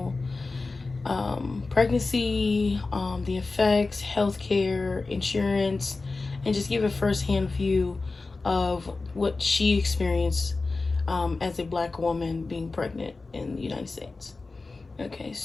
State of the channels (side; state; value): right; quieter; 3.7 dB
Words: pregnancy, the effects, healthcare, insurance, and just give a firsthand view of what she experienced as a black woman being pregnant in the United States. Okay,